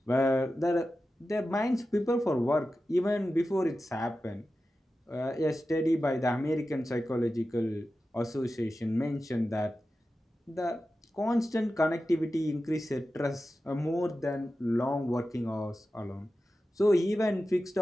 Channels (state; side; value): normal; both; correlation 0.93